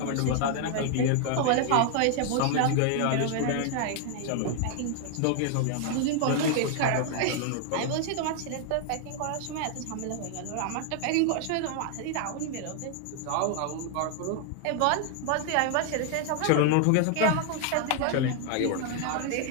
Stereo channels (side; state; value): both; different; correlation 0.00